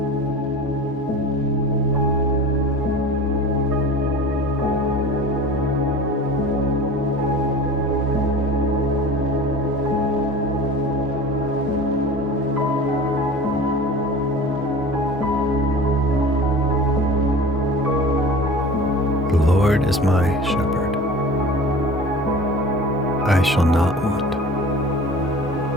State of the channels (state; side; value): normal; both; correlation 0.38